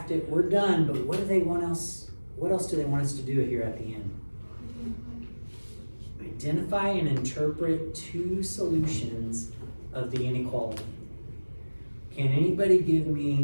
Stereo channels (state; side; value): inverted; both; correlation -1.00